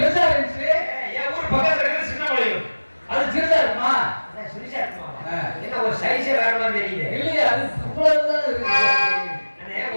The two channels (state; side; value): inverted; both; correlation -1.00